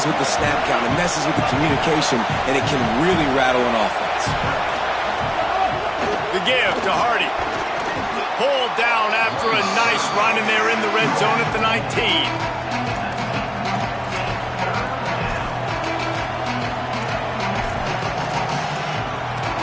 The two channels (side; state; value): both; identical; correlation 1.00